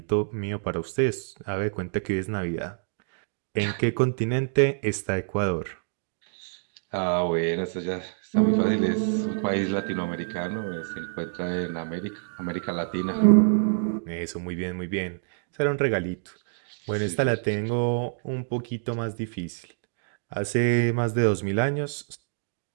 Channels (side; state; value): left; silent; digital silence